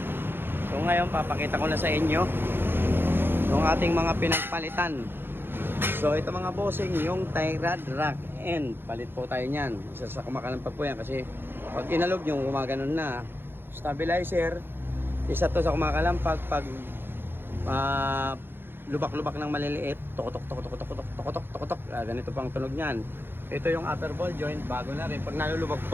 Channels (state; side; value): late; left; 0.10 ms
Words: So ngayon papakita ko na sa inyo yung ating mga pinagpalitan. So ito mga bossing, yung tie rod rack end, palit po tayo niyan. Isa sa kumakalampag po yan kasi pag inalog nyo gumaganon na. Stabilizer, isa to sa kumakalampag pag lubak-lubak ng maliliit, tok-tok, ganito pang tunog niyan. Ito yung upper ball joint, bago na rin. Pag nalulubak,